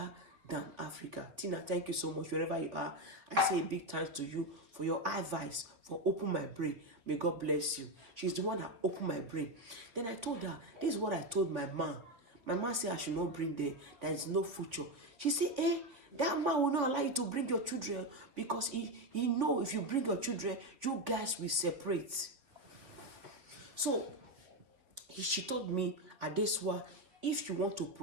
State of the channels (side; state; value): left; late; 3.7 ms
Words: than Africa. Tina, thank you so much wherever you are. I say a big thanks to you for your advice, for opening my brain. May God bless you. She's the one that opened my brain. Then I told her, this is what I told my mom. My mom said I should not bring them. There is no future. She said, that man will not allow you to bring your children because he know if you bring your children, you guys will separate. So she told me, Adeswa, if you want to